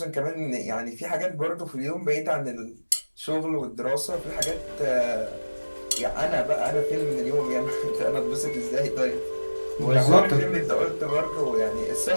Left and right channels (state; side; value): inverted; both; correlation -1.00